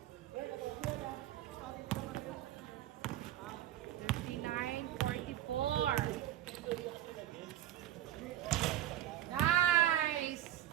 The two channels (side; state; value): left; quieter; 13.0 dB